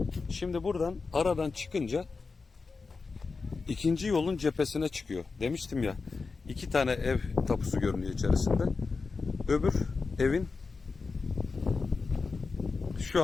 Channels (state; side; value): quieter; right; 4.4 dB